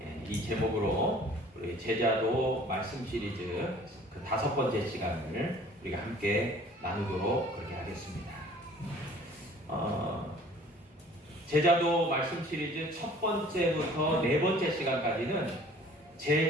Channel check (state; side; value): normal; both; correlation 0.51